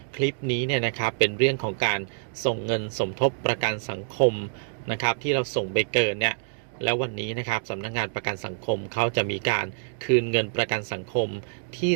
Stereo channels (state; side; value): silent; left; digital silence